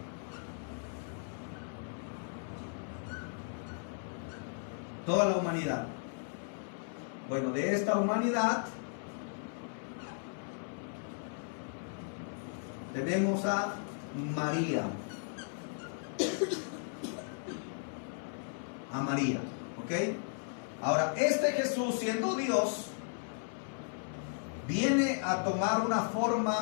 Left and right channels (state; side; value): silent; right; 54 dB below the other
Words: Toda la humanidad. Bueno, de esta humanidad tenemos a María. A María, ¿ok? Ahora, este Jesús, siendo Dios, viene a tomar una